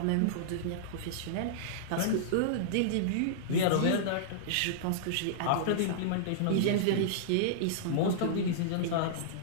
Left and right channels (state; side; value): different; both; correlation -0.02